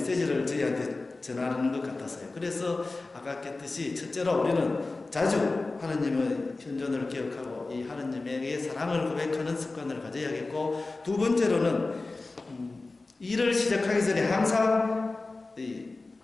저희한테 전하는 것 같았어요. 그래서 아까 했듯이 첫째로 우리는 자주 하느님의 현존을 기억하고 이 하느님에게 사랑을 고백하는 습관을 가져야겠고, 두 번째로는 일을 시작하기 전에 항상 이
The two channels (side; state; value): right; quieter; 3.4 dB